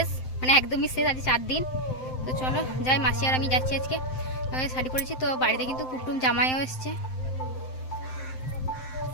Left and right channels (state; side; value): late; right; 7.7 ms